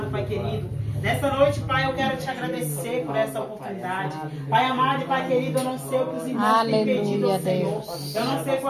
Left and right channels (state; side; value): identical; both; correlation 1.00